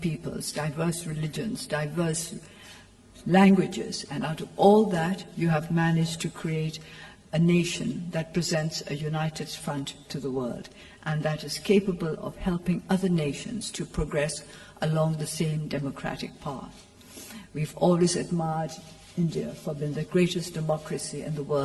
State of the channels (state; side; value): identical; both; correlation 1.00